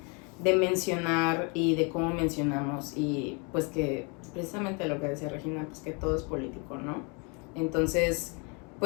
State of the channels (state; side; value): quieter; right; 32.9 dB